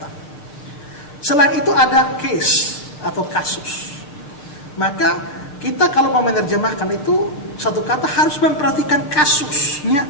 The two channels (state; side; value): late; right; 6.7 ms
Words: Selain itu ada case atau kasus. Maka kita kalau mau menerjemahkan itu satu kata harus memperhatikan kasusnya